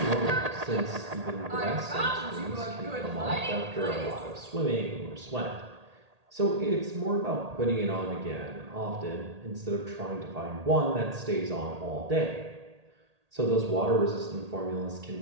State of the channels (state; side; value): late; left; 1.8 ms